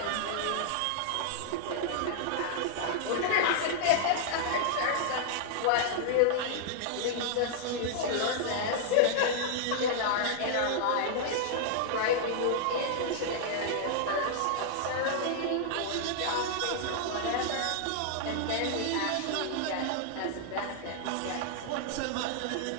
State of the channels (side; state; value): both; different; correlation -0.01